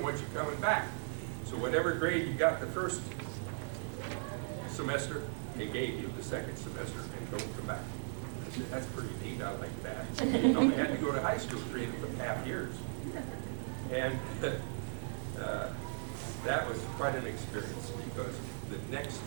want you coming back. So whatever grade you got the first semester, they gave you the second semester, and don't come back. I said, that's pretty neat, I like that. You know, they had to go to high school 3.5 years. And that was quite an experience, because the next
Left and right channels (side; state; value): left; silent; 53 dB below the other